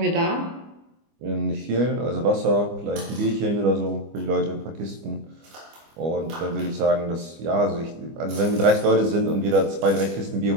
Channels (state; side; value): late; left; 25 ms